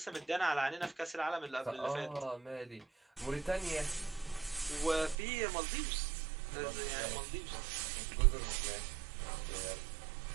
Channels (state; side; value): drops out; left; at 5.2 s